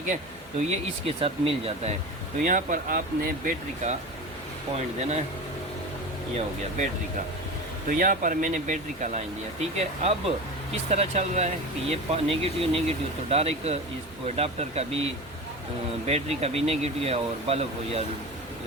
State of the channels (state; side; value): normal; both; correlation 0.29